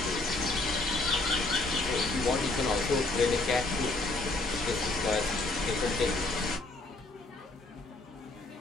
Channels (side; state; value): right; quieter; 3.0 dB